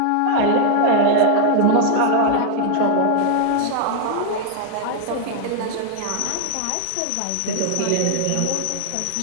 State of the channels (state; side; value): different; both; correlation 0.00